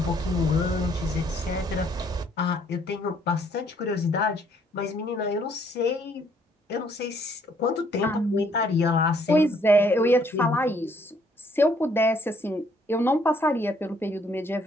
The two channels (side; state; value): both; normal; correlation 0.66